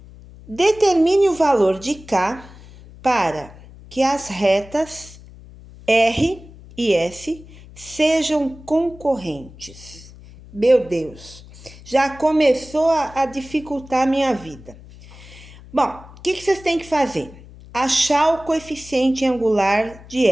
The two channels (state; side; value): noise; left; hum, 20 dB below the sound